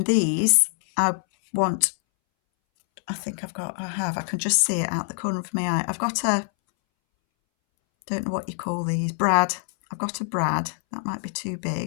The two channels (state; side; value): silent; right; 62 dB below the other